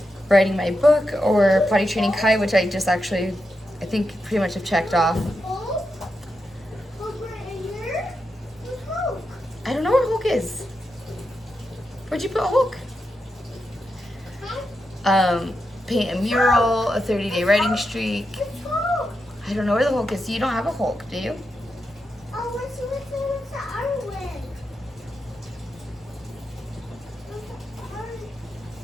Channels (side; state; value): both; normal; correlation 0.87